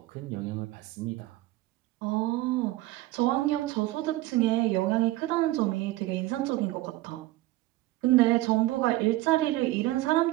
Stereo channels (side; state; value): left; quieter; 17.6 dB